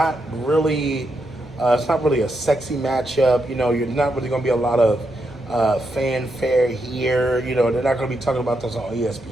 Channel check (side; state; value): both; normal; correlation 0.82